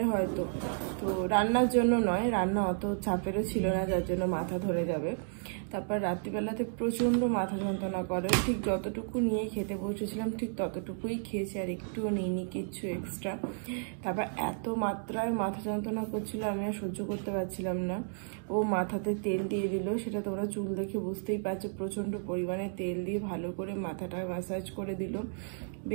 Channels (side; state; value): left; silent; digital silence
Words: হয়তো, তো রান্নার জন্য নয়, রান্না অত চাপেরও ছিল না যার জন্য মাথা ধরে যাবে। তারপর রাত্রিবেলাতে প্রচণ্ড মাথা যন্ত্রণা করে, ঠিক যতটুকু নিয়ে খেতে বসেছিলাম ঠিক ততটুকুই খেয়েছি, আর একটুও নিইনি কিচ্ছু এক্সট্রা। তারপর এত মাত্রায় মাথা যন্ত্রণা করছিল আমি আর সহ্য করতে পারছিলাম না। ও মাথাতে তেল দিয়ে দিল, সেটা তোমরা চুল দেখে বুঝতেই পারছো, প্রচণ্ড পরিমাণে তেল দিয়ে ভালো করে মাথাটা ম্যাসাজ করে দিল,